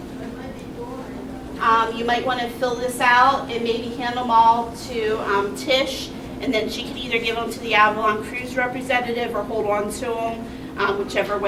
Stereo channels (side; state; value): both; identical; correlation 1.00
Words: You might want to fill this out and maybe hand them all to Tish, and then she can either give them to the Avalon cruise representative or hold on to them, whichever